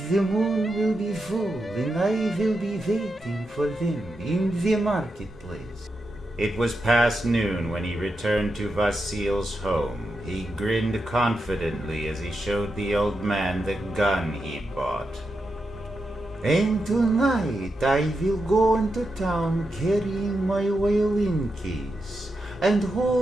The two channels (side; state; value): both; normal; correlation 0.87